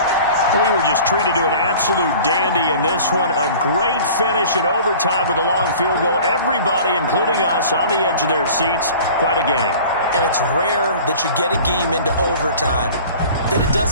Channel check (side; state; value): both; inverted; correlation -0.44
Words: We were just treated to an absolute dandy in this one. A great finish in overtime with a long field goal. Everybody, including us, on the edge of their seats. Quite a game. And it's rare that you get a game into overtime that it